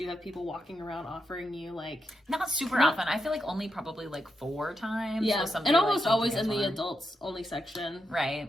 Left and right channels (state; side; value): normal; both; correlation 0.85